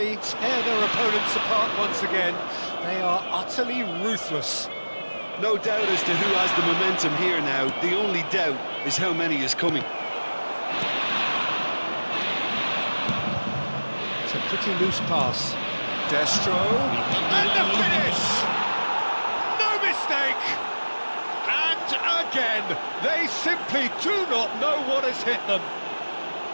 tear their opponents apart once again. They are utterly ruthless. No doubt as to who has the momentum here now. The only doubt is how many is coming. It's a pretty loose pass. Destro. And the finish! No mistake! And again, they simply do not know what has hit them.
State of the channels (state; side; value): inverted; both; correlation -1.00